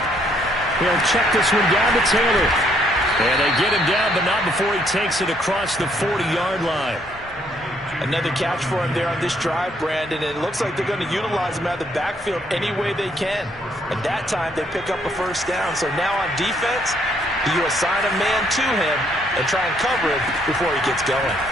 He'll check this one down to Taylor. And they get him down, but not before he takes it across the 40-yard line. Another catch for him there on this drive, Brandon, and it looks like they're going to utilize him out of the backfield any way they can. At that time, they pick up a first down. So now on defense, You assign a man to him and try and cover him before he gets going.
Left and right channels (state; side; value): normal; both; correlation 0.69